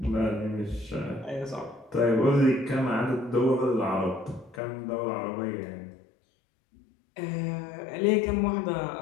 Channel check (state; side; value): drops out; right; at 4.6 s